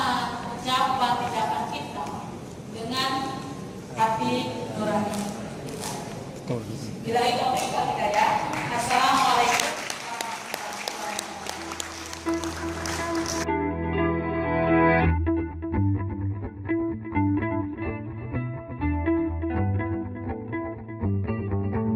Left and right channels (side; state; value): both; identical; correlation 1.00